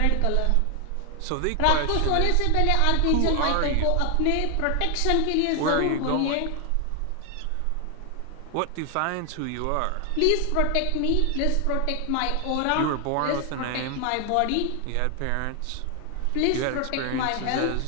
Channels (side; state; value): both; different; correlation 0.00